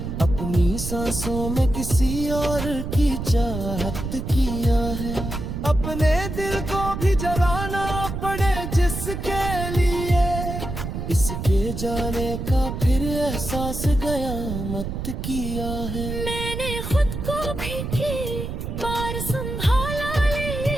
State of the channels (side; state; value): right; noise; rumble, 5 dB below the sound